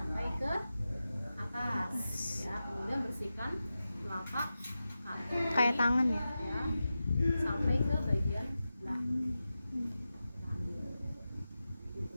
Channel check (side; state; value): both; inverted; correlation -0.93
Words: ke atas ya. Kemudian bersihkan telapak kaki Kayak tangan ya. sampai ke bagian belakang.